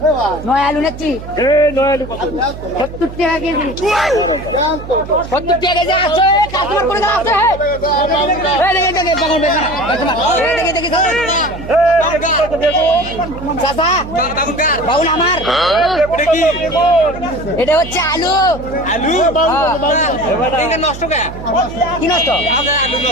নয় আলু নেছি 70 টাকা কেজি 70 টাকা কেজি আছে কাস্টমার করে দাও আছে এই দেখে দেখে বাগুন বেচা এই দেখে দেখে চাচা বাগুন আমার এটা হচ্ছে আলু আলু এটা নষ্ট কে কি নষ্ট আলু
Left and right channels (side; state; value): right; noise; hum, 12 dB below the sound